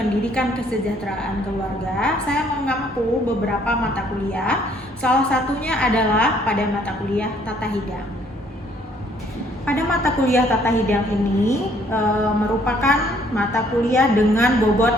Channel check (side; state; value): both; normal; correlation 0.63